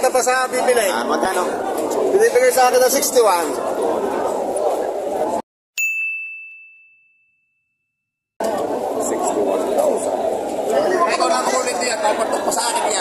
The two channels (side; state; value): both; identical; correlation 1.00